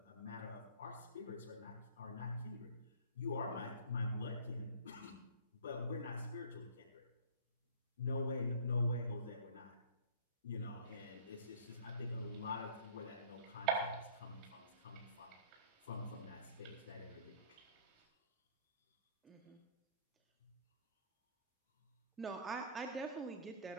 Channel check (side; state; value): both; inverted; correlation -0.47